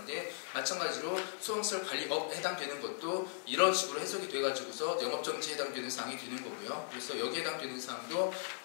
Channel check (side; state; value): right; silent; 53 dB below the other